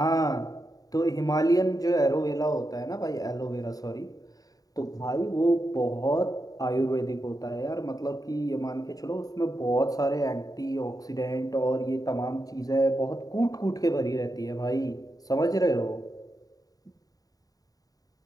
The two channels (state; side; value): late; right; 0.18 ms